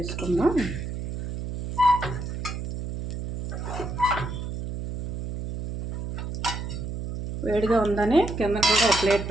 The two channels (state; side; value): noise; right; hum, 5 dB below the sound